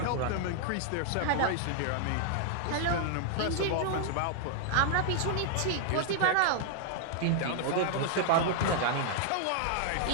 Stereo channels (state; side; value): different; both; correlation -0.01